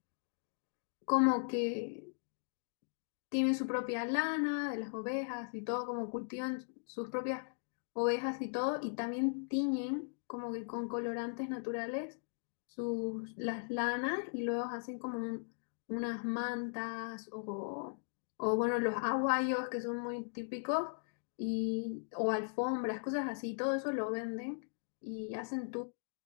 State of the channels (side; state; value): right; silent; digital silence